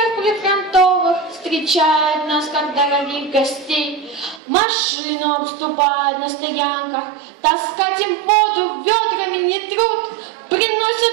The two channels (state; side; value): drops out; left; at 4.4 s